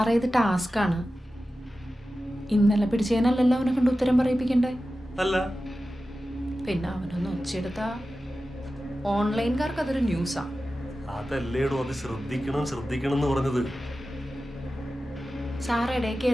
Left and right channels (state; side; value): normal; both; correlation 0.94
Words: ഇത് ടാസ്ക്കാണ്. ഇന്നലെ പിടിച്ചതിനല്ലല്ലോ അവനെ കൊണ്ട് ഉത്തരം പറയിപ്പിക്കണ്ടേ? അല്ല പിന്നെ അവനൊന്ന് ഒച്ചെടുത്ത ഓൺലൈൻകാർക്ക് അതൊരു ന്യൂസാ. അതല്ലേടോ, അത് ശ്രദ്ധിക്കണം എന്ന് പറഞ്ഞത്. സാറ് ഇടയിൽ